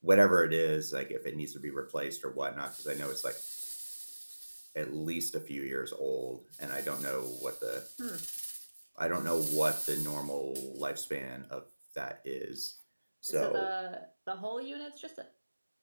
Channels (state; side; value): inverted; both; correlation -1.00